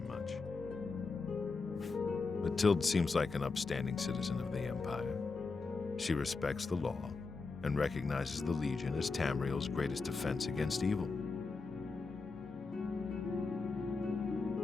Mathilde seems like an upstanding citizen of the Empire. She respects the law and recognizes the Legion as Tamriel's greatest defense against evil.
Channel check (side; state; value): right; quieter; 4.2 dB